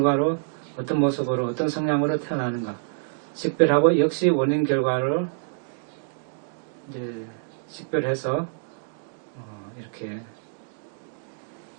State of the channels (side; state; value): left; silent; digital silence